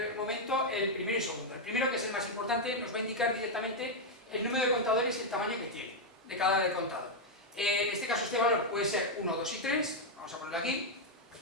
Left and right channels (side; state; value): both; normal; correlation 0.00